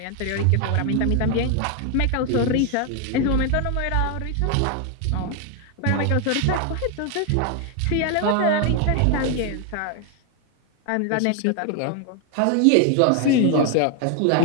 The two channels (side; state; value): both; different; correlation 0.01